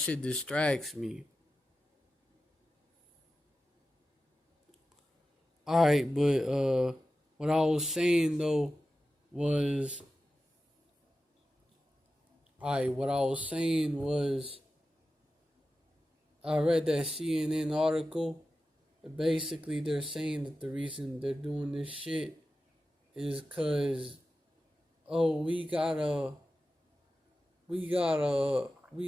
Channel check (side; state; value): both; normal; correlation 0.93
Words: distracts me. Alright, but what I was saying though was, what I was saying was, I read that CNN article. Basically, they're saying that the reason they're doing this shit is because, oh, we gotta